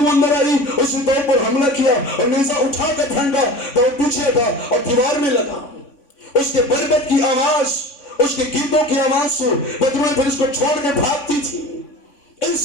اندر آئی، اس نے داؤد پر حملہ کیا اور نیزہ اٹھا کر پھینکا، داؤد پیچھے تھا اور دیوار میں لگا۔ اس کے بربت کی آواز، اس کے گیتوں کی آواز سے بدروہیں پھر اس کو چھوڑ کے بھاگتی تھی۔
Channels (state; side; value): late; right; 3.6 ms